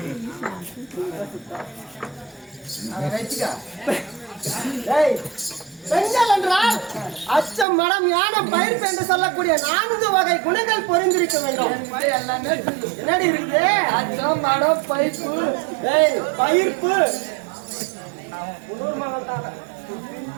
பெண்கள் என்றால் அச்சம் மனம் யானம் பயிர்ப்பு என்று சொல்லக்கூடிய 4 வகை குணங்கள் பொருந்திருக்க வேண்டும். என்னடி இருக்குது? அச்சம் மனம் பயிர்ப்பு பயிர்ப்பு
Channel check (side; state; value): left; drops out; at 7.7 s